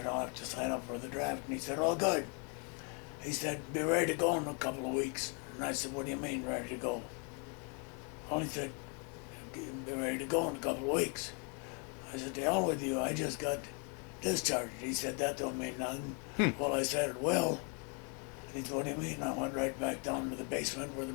"I'll have to sign up for the draft." And he said, "Oh, good." He said, "Be ready to go in a couple of weeks." And I said, "What do you mean, ready to go?" Well, he said, "Be ready to go in a couple of weeks." I said, "To hell with you, I just got discharged." He said, "That don't mean nothing." Well, I said, "It will." And he said, "What do you mean?" I went right back down to the basement where the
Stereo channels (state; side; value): quieter; right; 36.9 dB